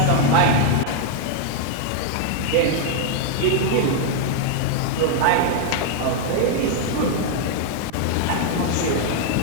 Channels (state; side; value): different; both; correlation 0.00